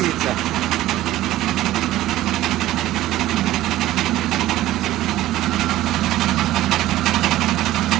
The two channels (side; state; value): left; quieter; 15.2 dB